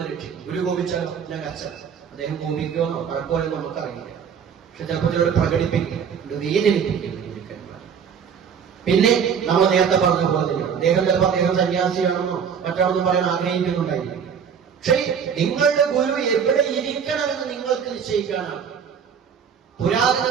രക്ഷിക്കും. ഗുരു കോപിച്ചാൽ ഞാൻ കർച്ചന. അദ്ദേഹം കോപിക്കുമെന്നോ കുഴപ്പമെന്നോ നമുക്കറിയില്ല. പക്ഷെ ചിലപ്പോൾ ചിലർ പ്രകടിപ്പിക്കും, വേദനിപ്പിക്കും. പിന്നെ നമ്മൾ നേരത്തെ പറഞ്ഞ പോലെ തന്നെയാണ് അദ്ദേഹം ചിലപ്പോൾ അദ്ദേഹം സന്യാസിയാണെന്നോ മറ്റാണെന്നും പറയാൻ ആഗ്രഹിക്കുന്നുണ്ടായിരിക്കും. പക്ഷേ നിങ്ങളുടെ ഗുരു എവിടെ ഇരിക്കണമെന്ന് നിങ്ങൾക്ക് നിശ്ചയിക്കാനാണ്.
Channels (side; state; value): left; quieter; 7.3 dB